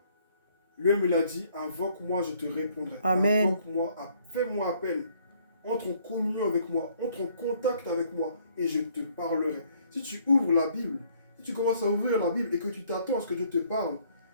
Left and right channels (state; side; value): inverted; both; correlation -0.64